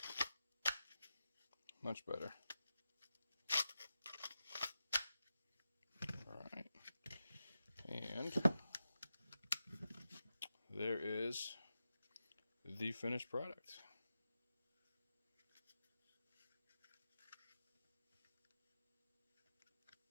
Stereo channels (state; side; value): inverted; both; correlation -0.90